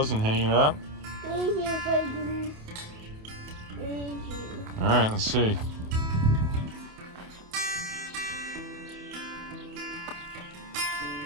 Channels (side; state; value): left; late; 28 ms